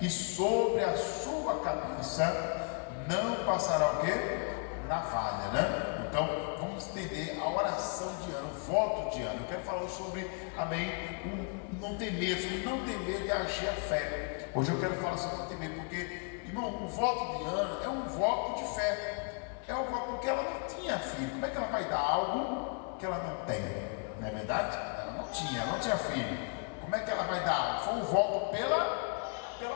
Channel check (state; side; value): quieter; right; 39.0 dB